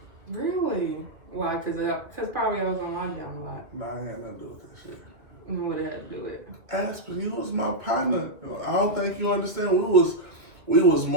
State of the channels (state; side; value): late; left; 2.6 ms